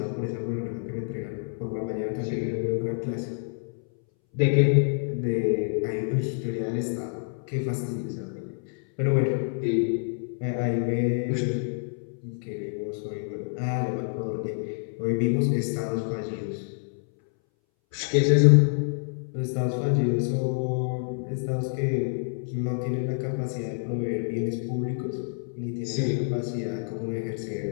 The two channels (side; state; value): right; silent; 60 dB below the other